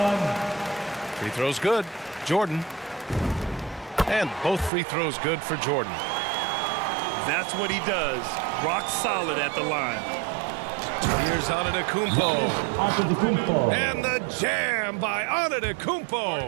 Free throws good. Jordan. And both free throws good for Jordan. That's what he does. Rock solid at the line. Here's Antetokounmpo. And the jam by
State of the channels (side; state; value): left; drops out; at 4.7 s